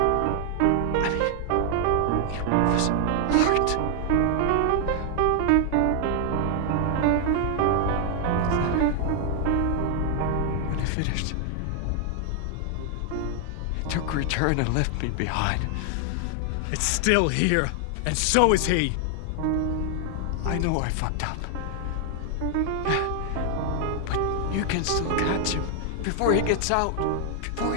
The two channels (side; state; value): both; different; correlation 0.00